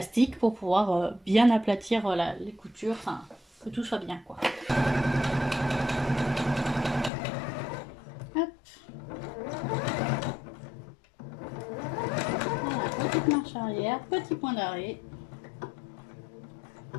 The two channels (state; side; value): drops out; right; at 7.1 s